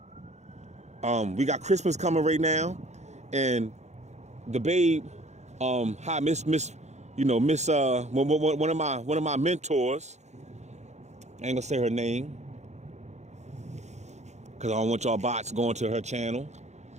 We got Christmas coming right now, and the babe, hi Miss, Miss, one of my mentors. I ain't gonna say her name because I don't want y'all bots going to her channel.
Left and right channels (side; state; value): left; late; 0.33 ms